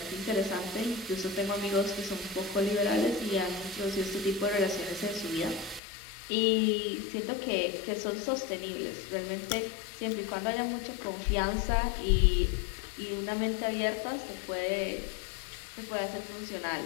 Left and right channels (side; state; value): right; drops out; at 5.8 s